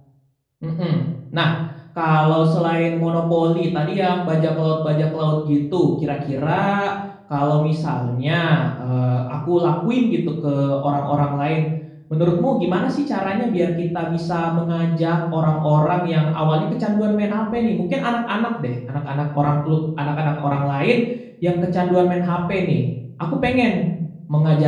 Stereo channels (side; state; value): both; identical; correlation 1.00